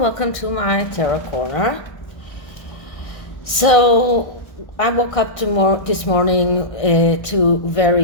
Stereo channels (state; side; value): late; right; 1.5 ms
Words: to my tarot corner. So I woke up this morning to